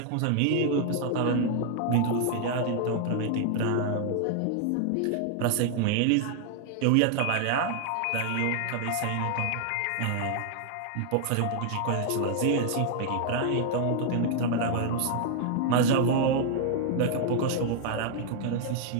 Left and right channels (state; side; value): different; both; correlation 0.00